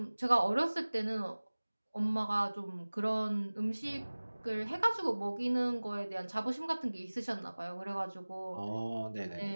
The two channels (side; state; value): both; inverted; correlation -1.00